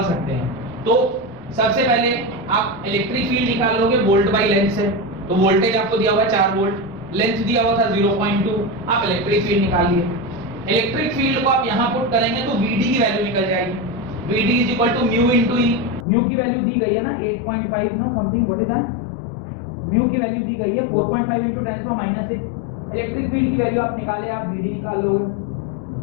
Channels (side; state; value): right; drops out; at 16.1 s